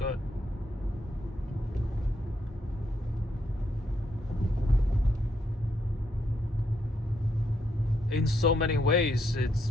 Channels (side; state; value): both; normal; correlation 0.78